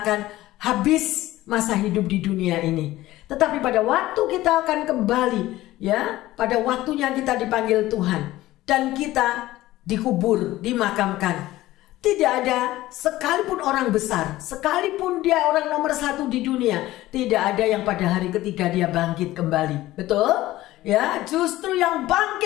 akan habis masa hidup di dunia ini. Tetapi pada waktu kita akan kembali, ya, pada waktunya kita dipanggil Tuhan dan kita dikubur, dimakamkan. Tidak ada sekalipun orang besar, sekalipun dia orang nomor 1 di dunia, tidak ada yang pada hari ketiga dia bangkit kembali. Betul? Ya, justru yang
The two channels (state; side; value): quieter; right; 16.4 dB